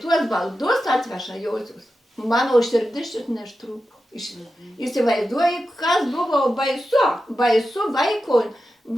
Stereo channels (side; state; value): both; normal; correlation 0.91